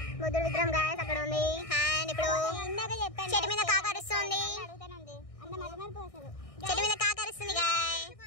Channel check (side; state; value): right; late; 1.6 ms